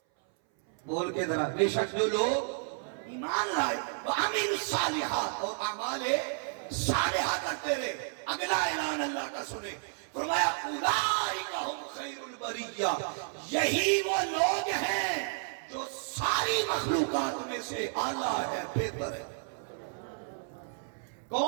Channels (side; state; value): left; silent; 57 dB below the other